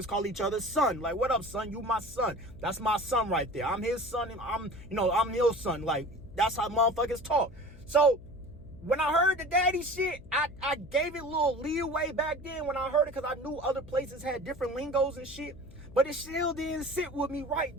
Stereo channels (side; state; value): left; noise; hum, 20 dB below the sound